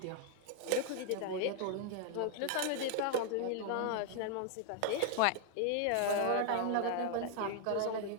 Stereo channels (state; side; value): different; both; correlation 0.00